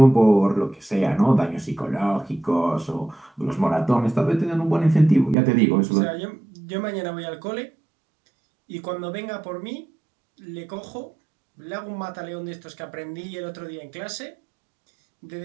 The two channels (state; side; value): drops out; left; at 5.4 s